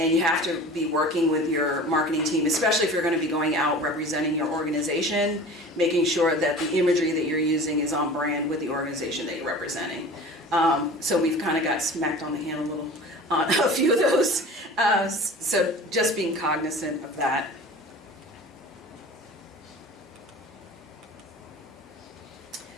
you have to be working with your marketing team, especially if you're going to be going out representing your organization, making sure that the imagery that you're using is on brand with the organization that you're representing. So we've kind of got smacked on the hand a little on a few of those. So just being cognizant of that.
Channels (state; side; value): normal; both; correlation 0.40